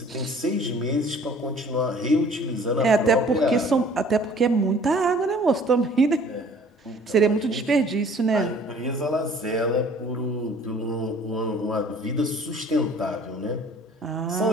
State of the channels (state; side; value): normal; both; correlation 0.53